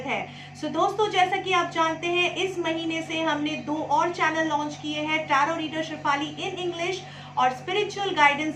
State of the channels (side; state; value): both; identical; correlation 1.00